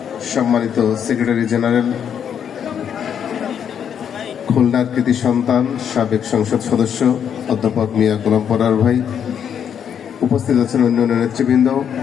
সম্মানিত সেক্রেটারি জেনারেল, খুলনার কৃতি সন্তান, সাবেক সংসদ সদস্য অধ্যাপক মিয়া গোলাম পরার ভাই, উপস্থিত আছেন অন্যান্য নেতৃবৃন্দ,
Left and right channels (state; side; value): quieter; right; 8.3 dB